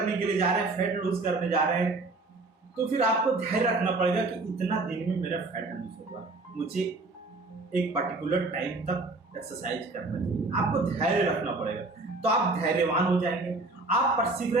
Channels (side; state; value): left; quieter; 3.3 dB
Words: के लिए जा रहे हैं, फैट लूज करने जा रहे हैं, तो फिर आपको धैर्य रखना पड़ेगा कि इतना दिन में मेरा फैट लूज होगा, मुझे एक पर्टिकुलर टाइम तक एक्सरसाइज करना चाहिए। आपको धैर्य रखना पड़ेगा, तो आप धैर्यवान हो जाएंगे, आप